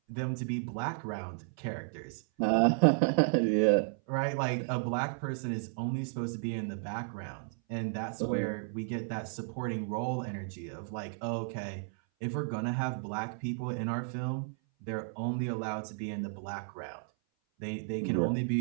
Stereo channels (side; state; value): left; silent; 56 dB below the other